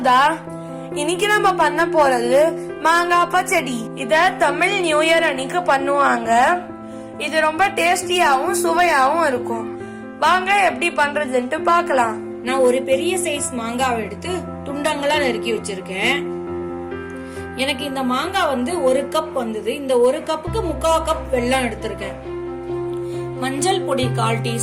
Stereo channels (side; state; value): both; identical; correlation 1.00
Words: இன்னைக்கு நம்ம பண்ண போறது மாங்காய் பச்சடி. இத தமிழ் நியூ இயர் அன்னைக்கு பண்ணுவாங்க. இது ரொம்ப டேஸ்டியாவும் சுவையாவும் இருக்கும். வாங்க எப்படி பண்றதுன்னு பார்க்கலாம். நான் ஒரு பெரிய சைஸ் மாங்காவை எடுத்து துண்டங்களா நறுக்கி வச்சிருக்கேன். எனக்கு இந்த மாங்காய் ஒரு கப் வந்தது. இந்த ஒரு கப்புக்கு 3/4 கப் வெல்லம் எடுத்திருக்கேன். மஞ்சள் பொடி 1/4